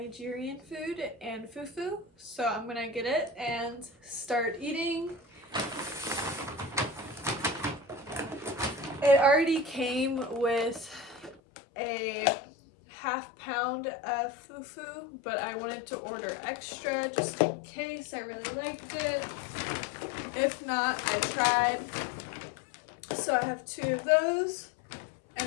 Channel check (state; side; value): drops out; right; at 11.4 s